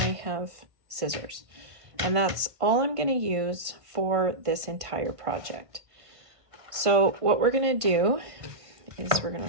have scissors, and that's all I'm going to use for this entire project. So what we're going to do is we're going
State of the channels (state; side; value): late; left; 1.5 ms